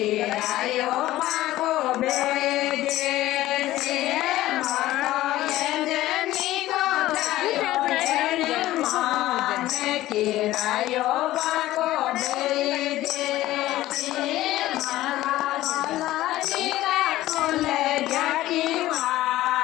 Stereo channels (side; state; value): right; quieter; 15.6 dB